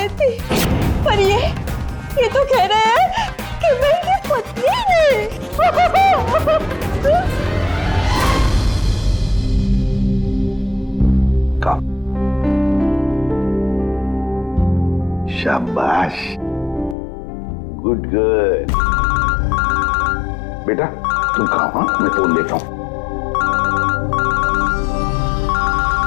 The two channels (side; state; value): right; drops out; at 16.9 s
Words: पर ये तो कह रहे हैं कि मैं इनकी पत्नी नहीं। शाबाश, गुड गर्ल। बेटा तुम खाओ, हाँ मैं फोन लेता हूँ।